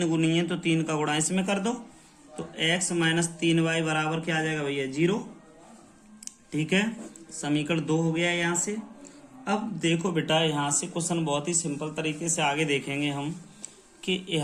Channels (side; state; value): both; identical; correlation 1.00